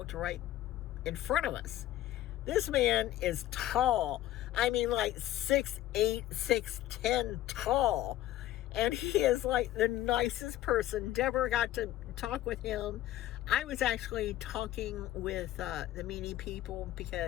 right in front of us. This man is tall. I mean, like 6'8", 6'10" tall, and he is like the nicest person. Deborah got to talk with him. I was actually talking with the meanie people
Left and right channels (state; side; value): quieter; right; 14.0 dB